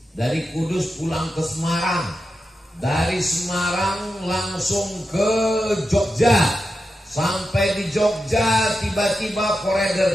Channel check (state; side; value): normal; both; correlation 0.89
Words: pulang ke Semarang, dari Semarang langsung ke Jogja. Sampai di Jogja tiba-tiba